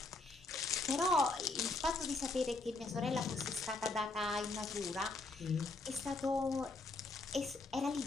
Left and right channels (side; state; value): right; quieter; 3.4 dB